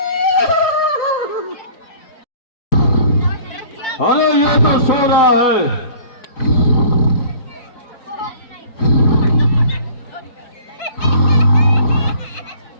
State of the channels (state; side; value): late; right; 4.8 ms